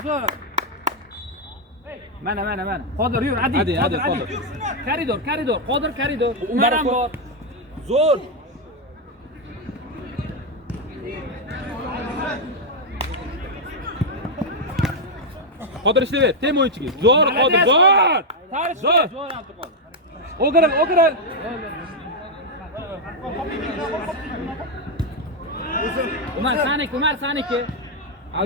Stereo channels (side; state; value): both; normal; correlation 0.00